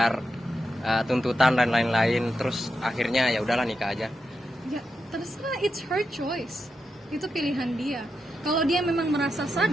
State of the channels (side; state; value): both; normal; correlation 0.87